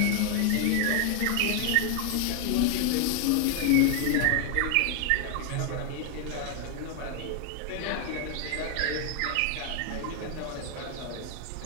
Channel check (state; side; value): different; both; correlation 0.00